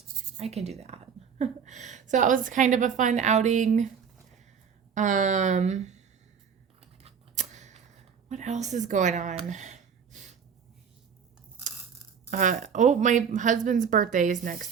I can do that. So that was kind of a fun outing. What else is going on? My husband's birthday is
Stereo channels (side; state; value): left; quieter; 7.0 dB